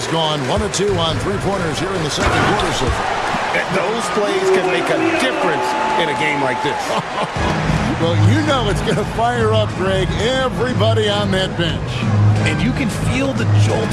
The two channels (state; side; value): identical; both; correlation 1.00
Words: gone 1 of 2 on 3-pointers here in the second quarter so far. Those plays can make a difference in a game like this. Well, you know it's going to fire up, Greg, everybody on that bench. And you can feel the